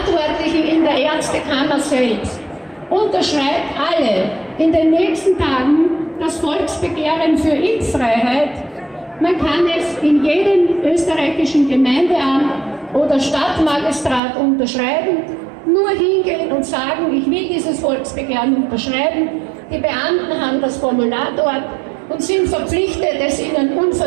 in der Ärztekammer selbst. Unterschreibt alle in den nächsten Tagen das Volksbegehren für Impffreiheit. Man kann es in jedem österreichischen Gemeindeamt oder Stadtmagistrat unterschreiben. Nur hingehen und sagen, ich will dieses Volksbegehren unterschreiben. Die Beamten haben das Formular dort und sind verpflichtet, es ihnen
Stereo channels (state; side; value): drops out; left; at 14.2 s